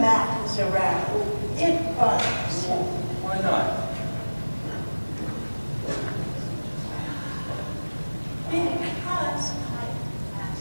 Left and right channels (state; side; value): inverted; both; correlation -1.00